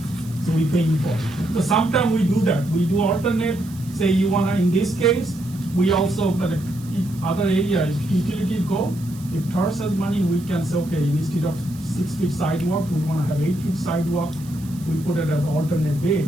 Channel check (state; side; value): noise; right; hiss, 21 dB below the sound